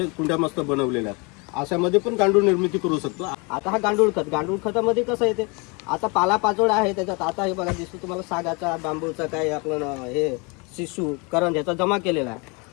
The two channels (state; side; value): quieter; right; 30.1 dB